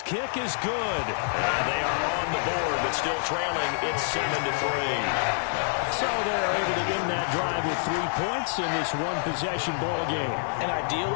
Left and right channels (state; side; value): silent; right; 60 dB below the other